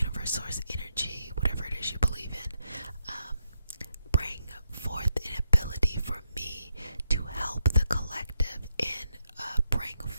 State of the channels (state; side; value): inverted; both; correlation -0.81